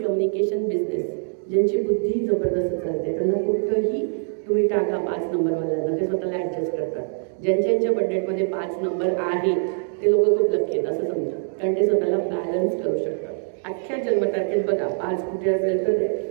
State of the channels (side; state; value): left; silent; digital silence